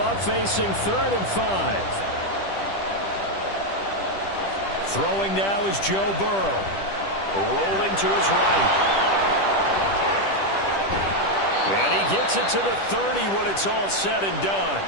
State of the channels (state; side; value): late; right; 10 ms